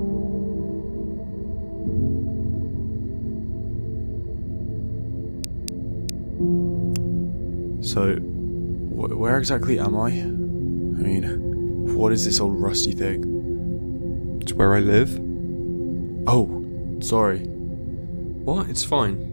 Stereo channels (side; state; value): both; inverted; correlation -1.00